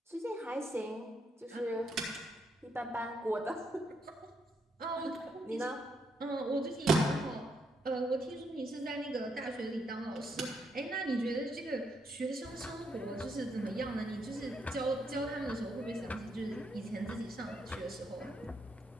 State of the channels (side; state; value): both; normal; correlation 0.77